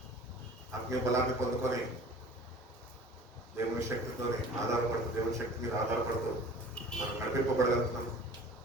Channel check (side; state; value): both; normal; correlation 0.45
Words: ఆత్మీయ బలాన్ని పొందుకొని దేవుని శక్తితోని ఆధారపడుతూ, దేవుని శక్తి మీద ఆధారపడుతూ మనం నడిపింపబడగలుగుతున్నాం